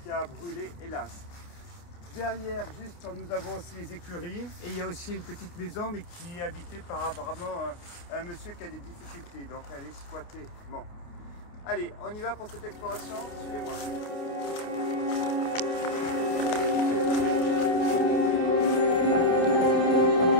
qui a brûlé hélas. Derrière, juste, nous avons aussi les écuries et il y a aussi une petite maison mais qui est habitée par apparemment un monsieur qui a des difficultés, donc elle est squattée. Bon. Allez, on y va pour cette exploration, suivez-moi.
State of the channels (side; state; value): right; late; 28 ms